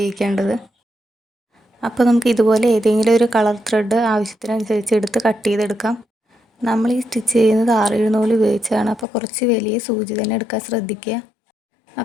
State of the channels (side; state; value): right; drops out; at 9.1 s